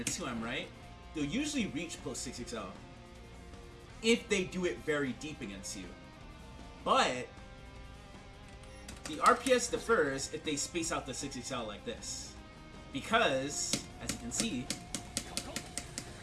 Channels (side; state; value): both; identical; correlation 1.00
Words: 2M, right? They'll usually reach close 6XL if they do it very deep against you. But the RPS differs if they space out the 6XL like this. Because, as you can see,